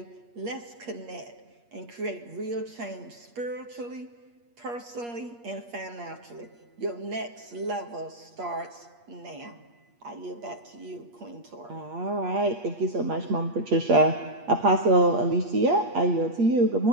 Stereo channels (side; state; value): left; late; 8.5 ms